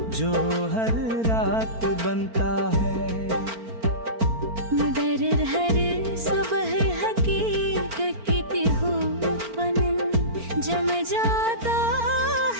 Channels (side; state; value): left; late; 4.4 ms